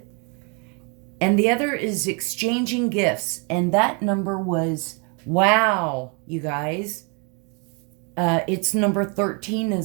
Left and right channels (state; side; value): quieter; left; 34.9 dB